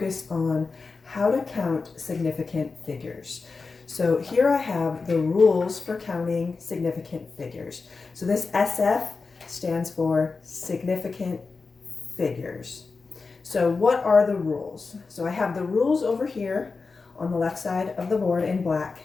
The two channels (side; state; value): right; quieter; 4.3 dB